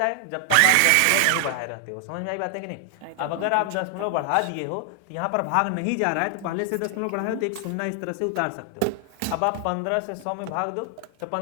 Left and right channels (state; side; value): different; both; correlation 0.00